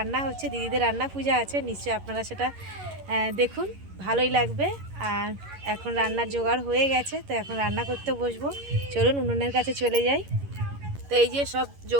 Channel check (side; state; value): left; late; 11 ms